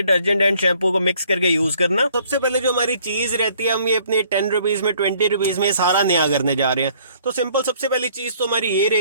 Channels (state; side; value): inverted; both; correlation -0.60